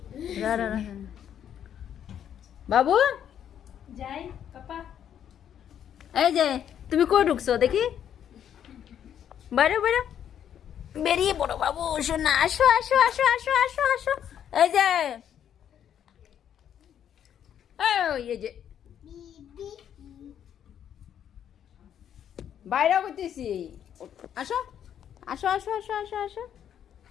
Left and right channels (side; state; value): right; quieter; 9.4 dB